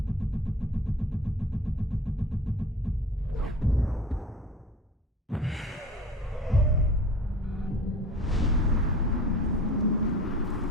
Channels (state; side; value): normal; both; correlation 0.40